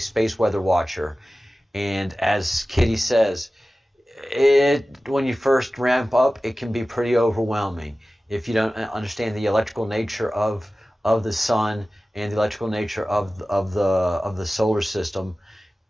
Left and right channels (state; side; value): normal; both; correlation 0.96